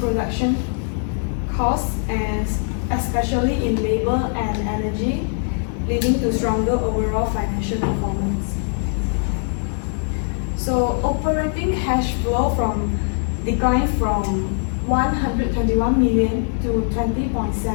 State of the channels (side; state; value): right; silent; 56 dB below the other